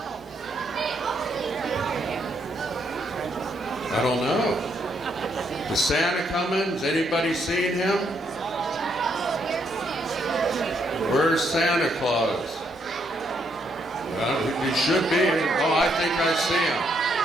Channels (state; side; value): normal; both; correlation 0.74